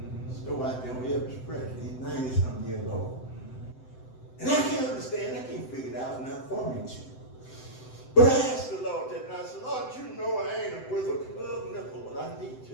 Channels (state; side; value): late; right; 7.8 ms